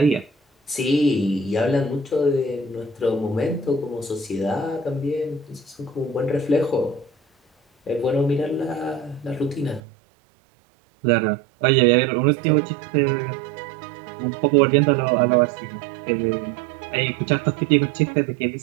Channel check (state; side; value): drops out; left; at 9.8 s